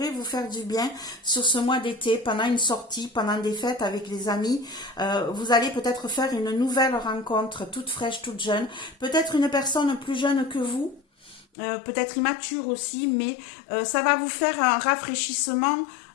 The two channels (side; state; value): right; drops out; at 11.5 s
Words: vous faire du bien sur ce mois d'été, pendant une sortie, pendant des fêtes avec les amis. Vous allez peut-être faire une nouvelle rencontre, toute fraîche, toute jeune. Peut-être une personne plus jeune que vous, peut-être immature aussi, mais ça va vous faire un rafraîchissement.